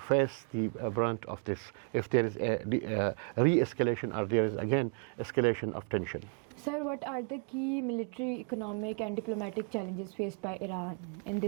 face the brunt of this if there is a re-escalation or there is again escalation of tension. Sir, what are the key military, economic and diplomatic challenges faced by Iran in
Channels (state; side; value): quieter; left; 39.9 dB